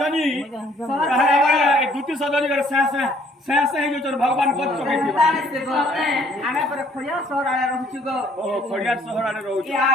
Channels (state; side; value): normal; both; correlation 0.61